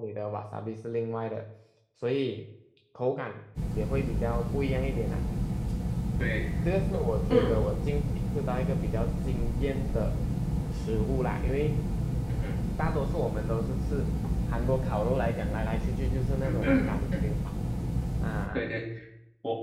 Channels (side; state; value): both; identical; correlation 1.00